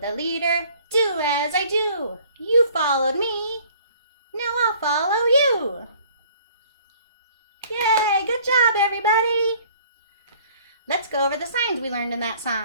leader, do as I do. You followed me, now I'll follow you. Yay, good job everybody. Let's go over the signs we learned in that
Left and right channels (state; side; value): inverted; both; correlation -0.55